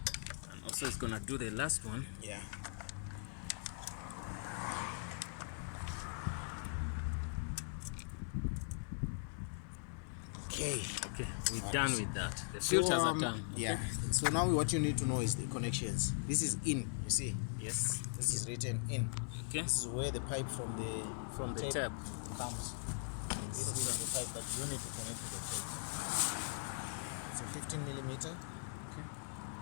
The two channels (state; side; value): silent; right; 51 dB below the other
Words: And also it's gonna do the last one. Yeah. Okay. Okay, we're done with that. The filters are done. Okay. Yeah. So now what you need to know is the connections. This is in, you see. Yes. This is written in. Okay. This is where the pipe from the tap comes. This is the pipe that you need to connect to the tape. It's a 15 millimeter. Okay.